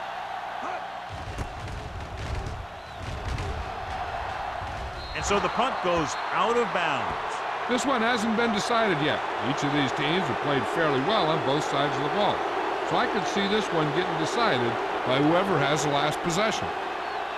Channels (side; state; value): both; identical; correlation 1.00